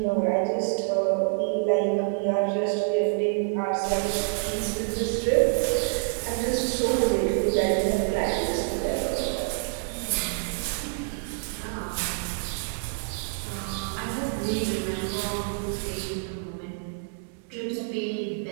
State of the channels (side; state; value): left; silent; digital silence